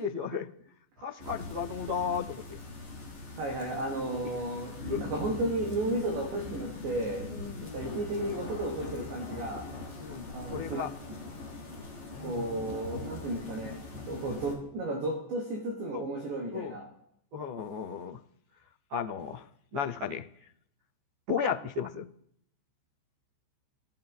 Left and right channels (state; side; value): late; left; 14 ms